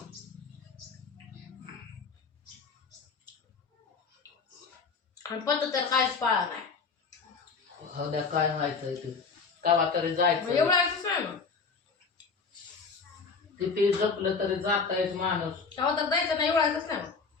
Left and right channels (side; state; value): right; quieter; 4.9 dB